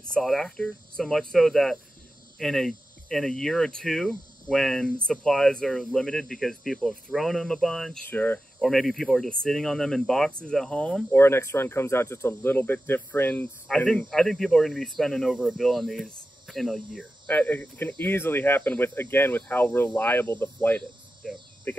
sought after, so much so that in a year or two, when supplies are limited because people have thrown them a bunch, Sure. or maybe people are just sitting on them in boxes at home, Or next run comes out just a little bit different. I think people are going to be spending over $1 billion on these in a year. It can easily happen with how reliable the flight is. Yeah.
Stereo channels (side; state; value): both; normal; correlation 0.93